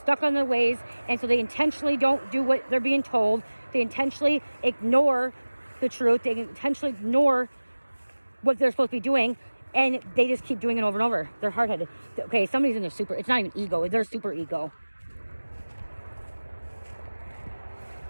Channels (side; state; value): both; inverted; correlation -1.00